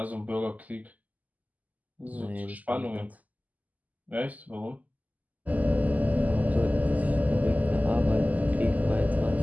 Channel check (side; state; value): left; late; 0.078 ms